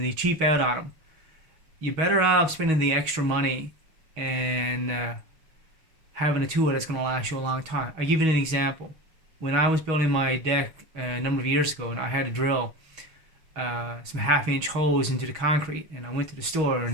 they cheap out on them. You're better off spending the extra money and having a tool that's going to last you a long time. I give you an example. When I was building my deck a number of years ago, and I had to drill some half-inch holes into the concrete, and I went to the store,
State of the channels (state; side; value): late; left; 6.3 ms